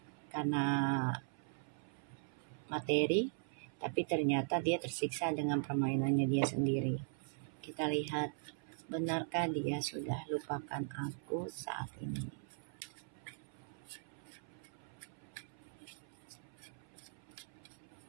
karena materi, tapi ternyata dia tersiksa dengan permainannya dia sendiri. Kita lihat, benarkah dia sudah lupakan aku saat ini?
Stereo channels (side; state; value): left; silent; 51 dB below the other